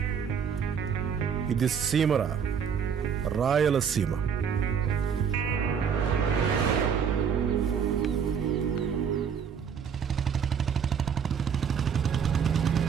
ఇది సీమరా, రాయలసీమ.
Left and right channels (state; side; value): quieter; left; 7.2 dB